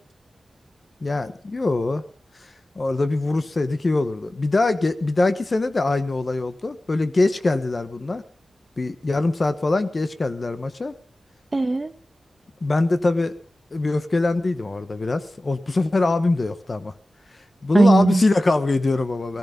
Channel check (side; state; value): both; normal; correlation 0.96